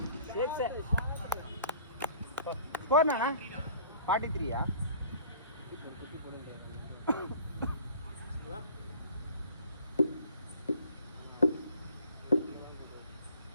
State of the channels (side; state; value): both; inverted; correlation -0.51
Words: என்ன ஸ்கோர் நானா 43-ஆ?